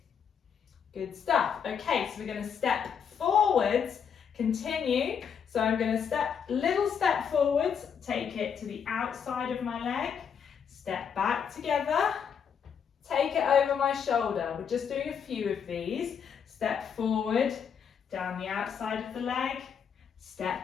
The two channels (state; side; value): quieter; right; 7.3 dB